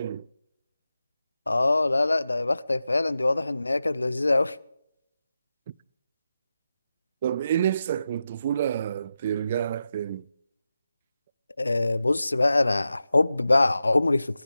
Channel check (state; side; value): inverted; both; correlation -0.90